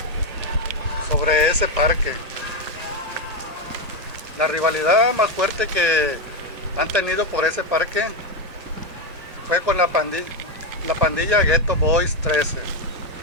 sobre ese parque. La rivalidad más fuerte que han tenido por ese parque fue con la pandilla Ghetto Boys 13.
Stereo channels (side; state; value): left; late; 1.8 ms